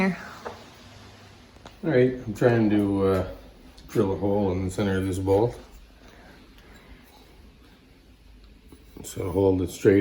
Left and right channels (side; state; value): both; identical; correlation 1.00